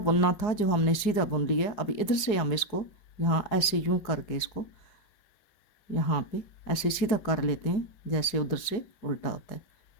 बुनना था जो हमने सीधा बुन लिया। अभी इधर से हम इसको यहाँ ऐसे यूं करके इसको यहाँ पे ऐसे सीधा कर लेते हैं जैसे उधर से उल्टा होता है।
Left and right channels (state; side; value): late; right; 4.8 ms